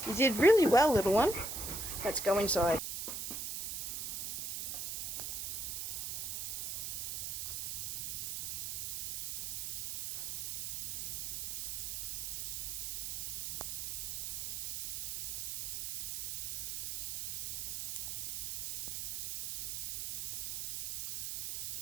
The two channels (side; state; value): right; noise; hiss, 3 dB below the sound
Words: You did really well, little one. Let's go inside.